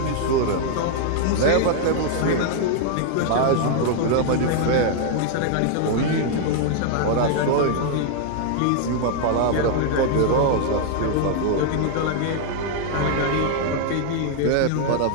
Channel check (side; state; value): both; different; correlation 0.00